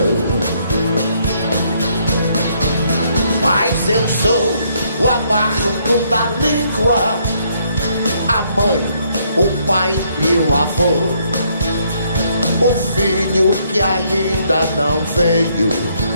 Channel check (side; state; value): both; inverted; correlation -0.70